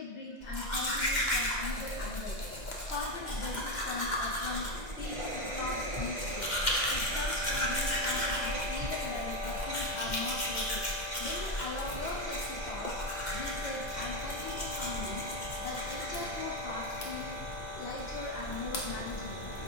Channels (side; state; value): right; late; 2.1 ms